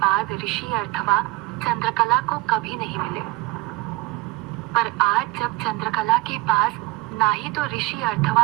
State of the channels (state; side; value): quieter; left; 21.3 dB